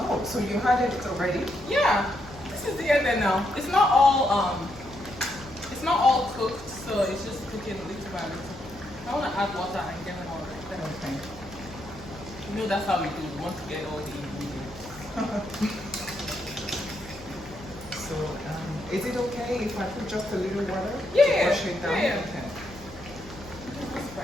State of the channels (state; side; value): normal; both; correlation 0.78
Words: so you had it already? Yeah. This is the end now. It's not all cooked, so it's just cooking little by little. I want to add water and get more right there. Okay. You know that's how we do. We want to get all the ingredients. So is it okay if I put just a little water? Yeah, To wash it down? yeah. Okay. That's